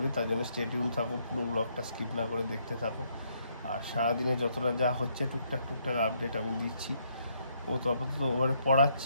তার জন্য স্টে টিউন থাকো, পুরো ব্লগটা স্কিপ না করে দেখতে থাকো। আর সারাদিনে যতটা যা হচ্ছে টুকটাক আপডেট আমি দিচ্ছি। ও তো আপাতত ওভারে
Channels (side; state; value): both; inverted; correlation -0.72